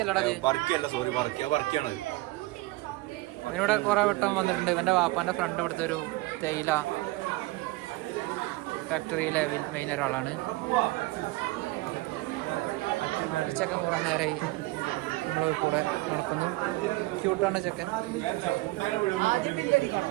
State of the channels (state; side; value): quieter; left; 20.9 dB